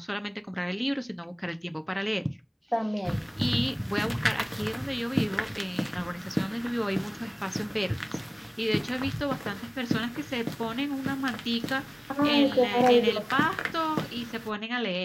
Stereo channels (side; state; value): both; identical; correlation 1.00